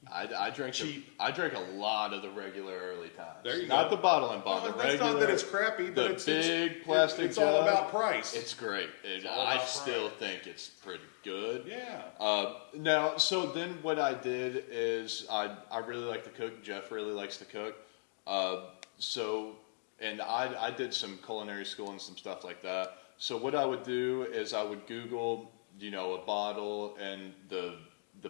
I drank Cheap. I drank a lot of the regular Early Times. There you Not go. the bottle and bond. Well, the that's regular. not that it's crappy, but the it's big plastic. It's all jug. about price. It's great. all I about still price. think it's pretty good. Yeah. Now, so then what I did is I really like to cook. Jeff really likes to cook. And I did some culinary school and some stuff like that. So what I would do is I would Google, a bottle and the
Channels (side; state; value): right; silent; digital silence